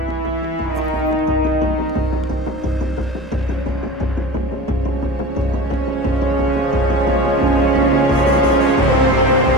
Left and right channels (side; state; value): both; normal; correlation 0.34